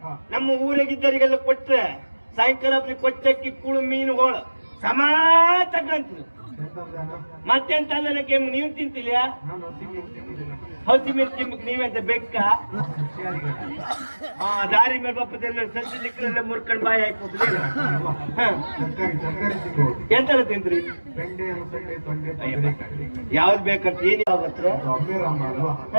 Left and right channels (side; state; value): both; inverted; correlation -1.00